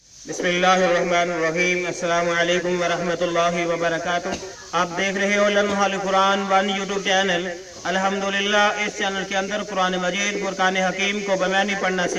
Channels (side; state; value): both; identical; correlation 1.00